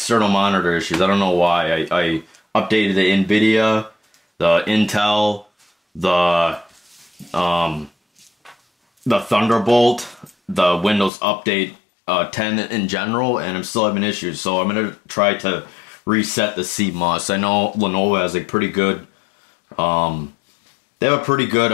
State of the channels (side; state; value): right; drops out; at 11.1 s